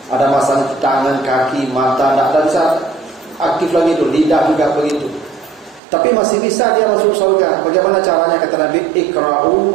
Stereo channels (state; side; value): drops out; left; at 5.8 s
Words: ada masalah tangan, kaki, mata, tidak bisa aktif lagi itu, lidah juga begitu. Tapi masih bisa dia masuk surga. Bagaimana caranya? Kata Nabi, ikra'u